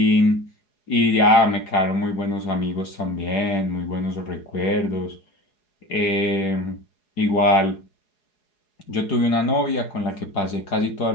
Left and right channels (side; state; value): right; late; 4.8 ms